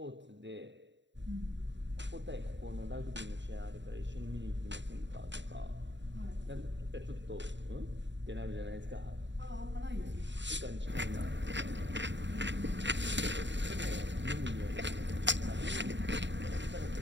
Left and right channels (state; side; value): late; left; 0.53 ms